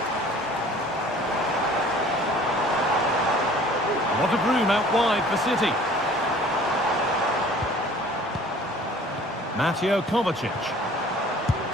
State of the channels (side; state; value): both; normal; correlation 0.50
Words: A lot of room out wide for City. Mateo Kovacic.